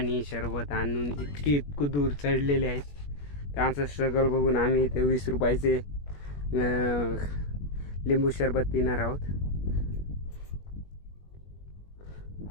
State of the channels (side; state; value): right; late; 21 ms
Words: सरबत आणून इतकं दूर चढलेले आहेत. त्यांचं स्ट्रगल बघून आम्ही इथे 20 रुपयाचे लिंबू सरबत पिणार आहोत.